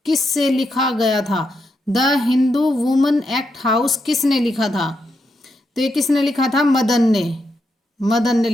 किससे लिखा गया था? The Hindu women act house किसने लिखा था? तो ये किसने लिखा था? मदन ने। मदन ने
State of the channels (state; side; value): normal; both; correlation 0.82